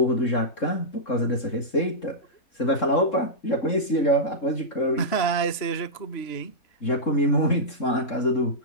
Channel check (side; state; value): right; late; 3.7 ms